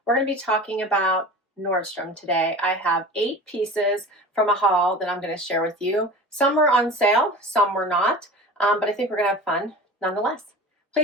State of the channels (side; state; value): both; normal; correlation 0.36